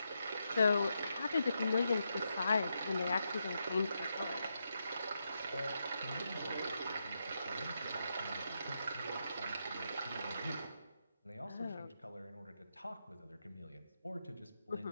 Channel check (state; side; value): inverted; both; correlation -0.84